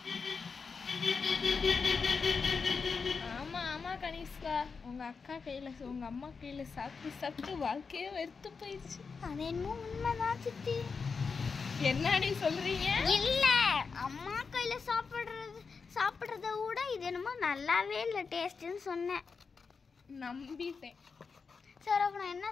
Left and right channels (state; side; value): quieter; right; 5.1 dB